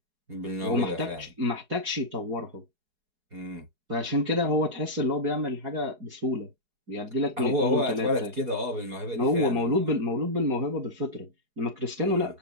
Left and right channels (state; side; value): late; left; 4.8 ms